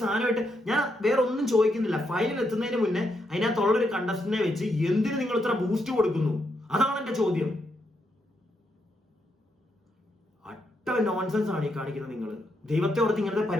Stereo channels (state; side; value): normal; both; correlation 0.80